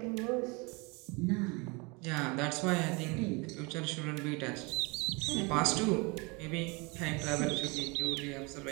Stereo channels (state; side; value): quieter; left; 28.3 dB